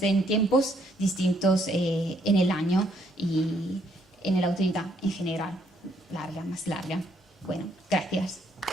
en tiempos distintos en el año y en la autoridad en general, más larga. Bueno, gracias.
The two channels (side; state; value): both; normal; correlation 0.70